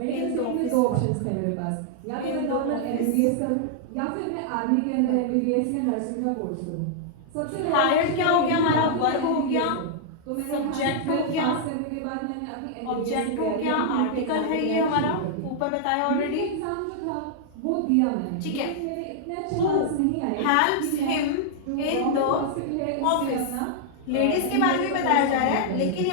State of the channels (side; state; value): both; different; correlation -0.01